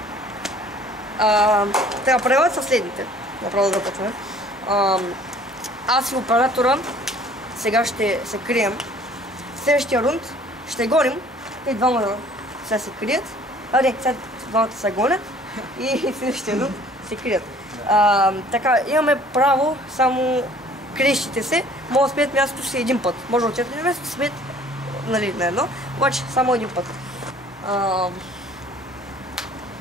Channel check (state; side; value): normal; both; correlation 0.53